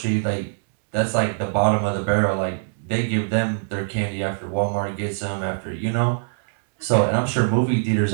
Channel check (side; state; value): left; silent; digital silence